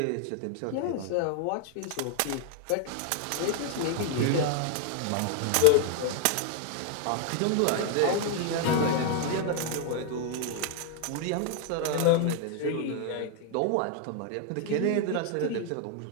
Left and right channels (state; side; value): different; both; correlation 0.00